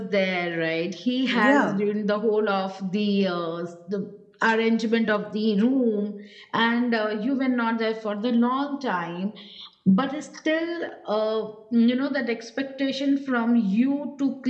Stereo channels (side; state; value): both; identical; correlation 1.00